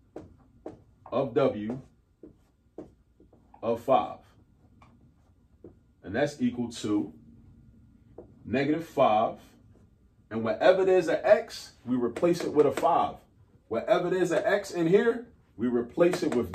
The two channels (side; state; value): both; identical; correlation 1.00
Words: of w of 5. And that's equal to negative 5. And wherever there's an x, we replace it with a 5. Wherever there's an x in here, we replace it with